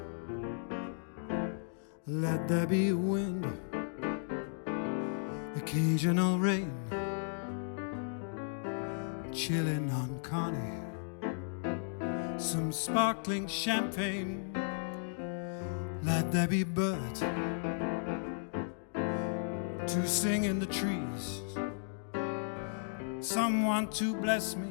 let there be wind, occasional rain, chilling on Connie, some sparkling champagne. Let there be birds to sing in the trees, someone to bless me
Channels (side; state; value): right; silent; digital silence